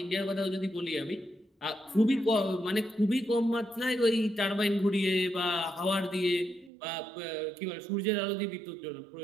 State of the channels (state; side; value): drops out; left; at 6.7 s